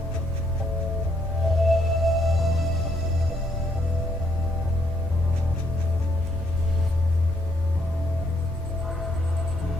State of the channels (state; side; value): normal; both; correlation 0.71